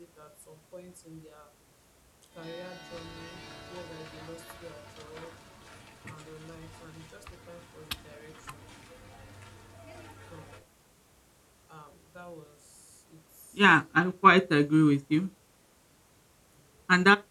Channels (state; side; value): identical; both; correlation 1.00